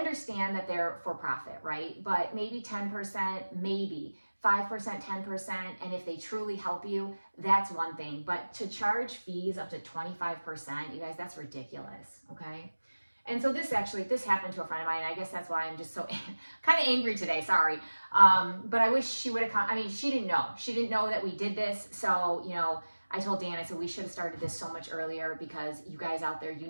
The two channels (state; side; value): inverted; both; correlation -1.00